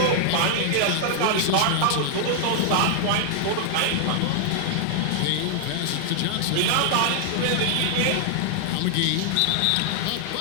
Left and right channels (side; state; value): both; different; correlation 0.00